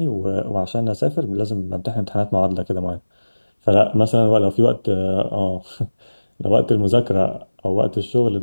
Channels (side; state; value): both; inverted; correlation -1.00